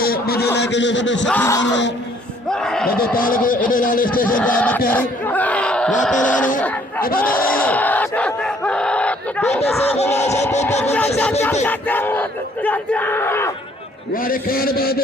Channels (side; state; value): both; normal; correlation 0.62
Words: मुझे लेके जो सब सखी मानो मुझे ताल को इधर वाले स्टेशन का मक्यारी वापस आने इधर बेटे से वारे खान